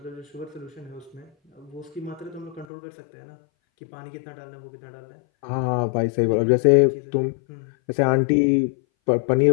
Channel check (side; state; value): right; drops out; at 2.7 s